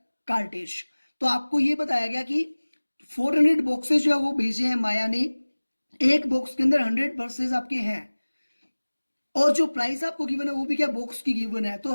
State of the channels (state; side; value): inverted; both; correlation -1.00